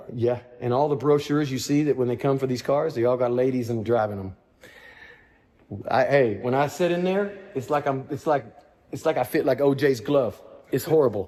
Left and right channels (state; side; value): identical; both; correlation 1.00